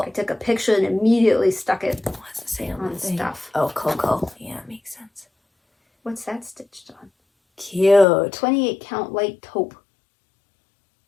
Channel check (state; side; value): drops out; right; at 8.1 s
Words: took a picture and immediately stuck it What's it say on the thing? stuff. Oh, Coco. Yeah, makes sense. What's that stitched on? Cute. 28 count light taupe.